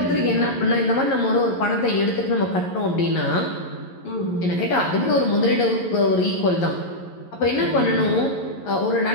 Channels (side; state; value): right; late; 11 ms